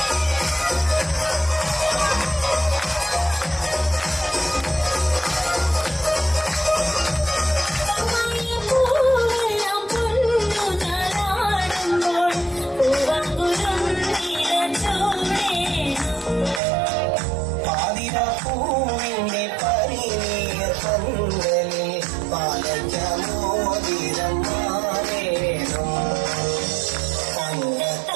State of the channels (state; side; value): drops out; left; at 16.6 s